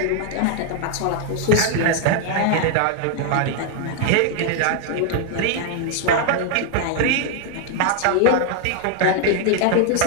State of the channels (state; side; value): different; both; correlation 0.00